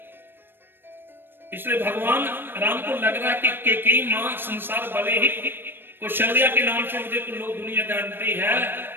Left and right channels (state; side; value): late; left; 0.099 ms